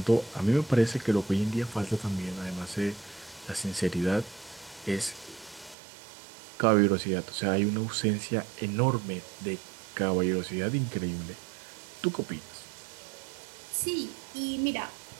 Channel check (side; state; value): left; drops out; at 5.8 s